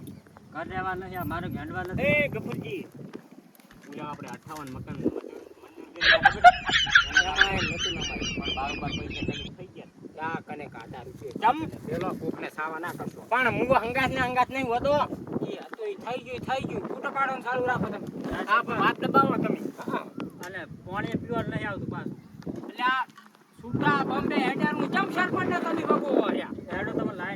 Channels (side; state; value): both; identical; correlation 1.00